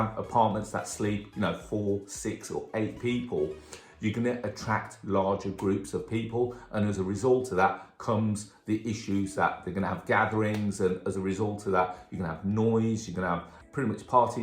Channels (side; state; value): both; identical; correlation 1.00